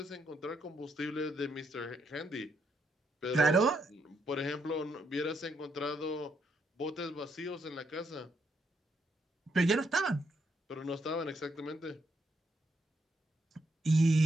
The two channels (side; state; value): both; normal; correlation 0.77